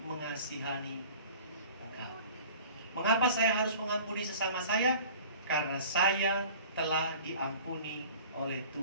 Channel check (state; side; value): inverted; both; correlation -0.44